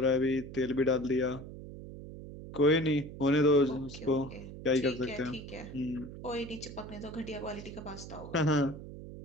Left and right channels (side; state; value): right; noise; hum, 12 dB below the sound